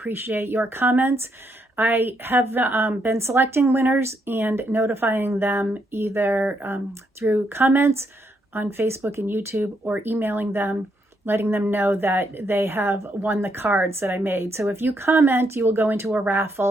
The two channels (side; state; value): both; normal; correlation 0.77